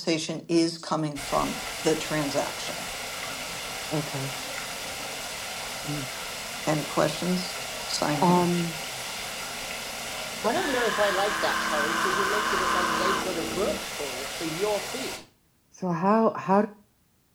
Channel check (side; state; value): both; identical; correlation 1.00